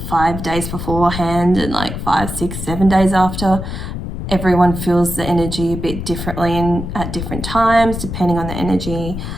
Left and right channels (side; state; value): left; noise; rumble, 6 dB below the sound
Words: days beforehand and like 5, 6, 7 days after. Everyone feels the energy a bit differently and at different times depending on the energy